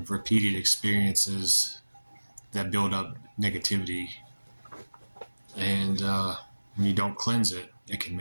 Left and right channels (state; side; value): inverted; both; correlation -1.00